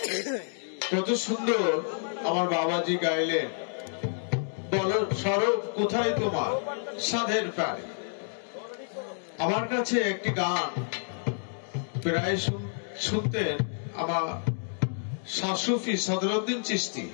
কত সুন্দর আমার বাবাজি গাইলেন, বলো সরব কোথায় তোমার সাধের পারে। আমার কাছে একটি গান প্রায় শুনতেন আমার শাসুফি সদরউদ্দিন চিশতি।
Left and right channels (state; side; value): silent; right; digital silence